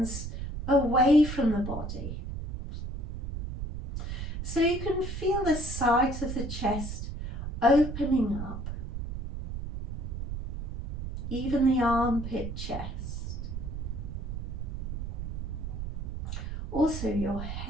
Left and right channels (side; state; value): right; noise; rumble, 6 dB below the sound